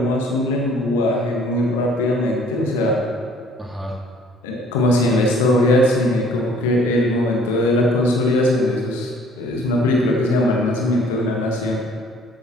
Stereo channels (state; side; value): normal; both; correlation 0.57